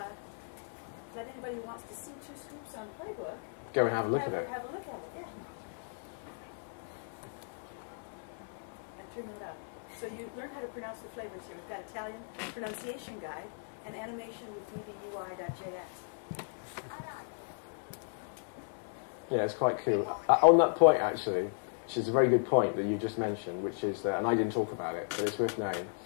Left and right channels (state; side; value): silent; right; 54 dB below the other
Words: let anybody who wants to see 2 Scoops on Playbook go and have a look at it. Have a look at it, yeah. And turn it up. So you learn how to pronounce the flavors here. We've got Italian pronunciation guide and animation with ddui.js. Yeah, it's quite cool. On that point, actually, which is a very good point that you just mentioned, which is that, and I didn't talk about it, but it's worth knowing.